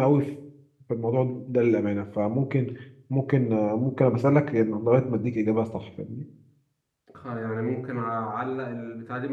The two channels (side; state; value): both; identical; correlation 1.00